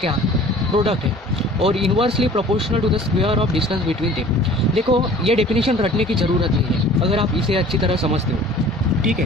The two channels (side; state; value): both; normal; correlation 0.47